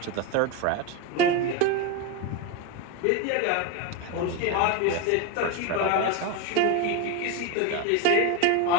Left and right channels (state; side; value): different; both; correlation 0.03